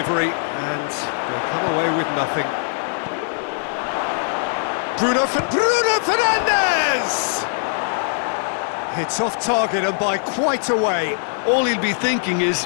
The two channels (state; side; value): silent; right; 61 dB below the other